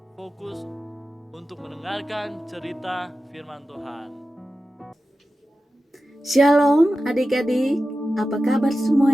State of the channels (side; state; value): both; normal; correlation 0.93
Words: fokus untuk mendengarkan cerita firman Tuhan. Shalom adik-adik, apa kabar